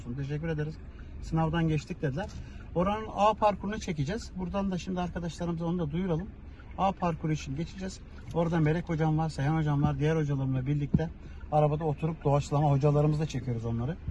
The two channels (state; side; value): identical; both; correlation 1.00